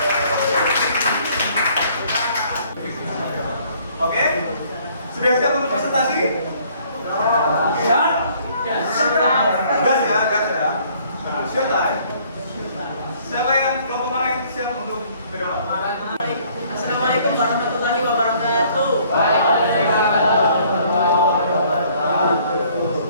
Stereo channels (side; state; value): both; inverted; correlation -0.60